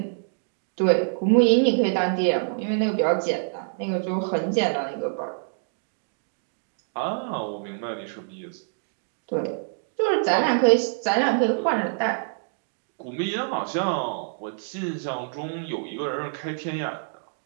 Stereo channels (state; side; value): silent; left; digital silence